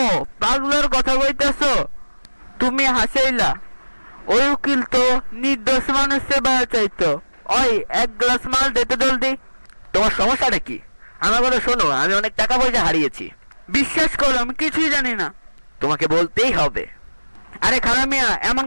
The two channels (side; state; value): both; inverted; correlation -1.00